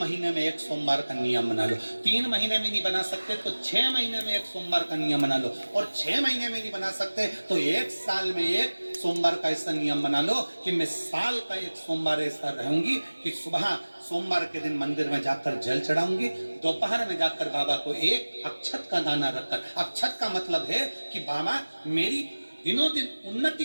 में एक सोमवार का नियम बना लो। 3 महीने में नहीं बना सकते तो 6 महीने में एक सोमवार का नियम बना लो। और 6 महीने में नहीं बना सकते तो 1 साल में एक सोमवार का ऐसा नियम बना लो कि मैं साल का एक सोमवार ऐसा रहूंगी कि सुबह सोमवार के दिन मंदिर में जाकर जल चढ़ाऊंगी, दोपहर में जाकर बाबा को एक अक्षत का दाना रखकर, अक्षत का मतलब है कि बाबा मेरी दिनों दिन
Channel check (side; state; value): both; inverted; correlation -1.00